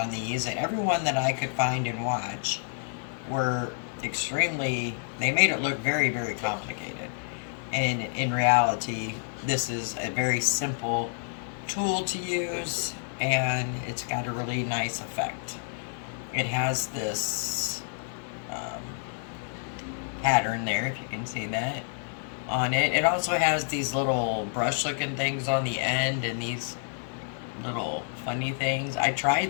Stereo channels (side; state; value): right; silent; 59 dB below the other